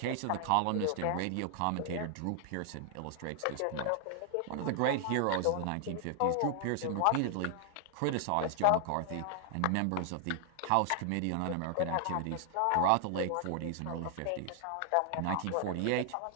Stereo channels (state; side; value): different; both; correlation 0.00